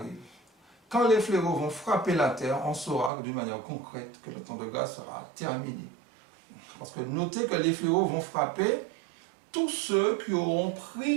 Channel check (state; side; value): drops out; left; at 3.1 s